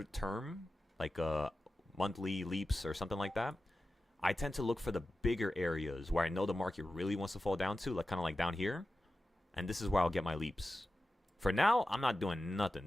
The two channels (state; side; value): normal; both; correlation 0.93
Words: term, like monthly leaps or something like that, I tend to look for the bigger areas where I know the market really wants to fall down to, kind of like down here. And this is where I'll get my leaps For now, I'm not doing nothing.